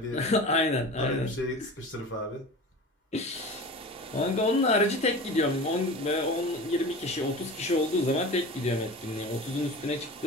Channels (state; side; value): normal; both; correlation 0.34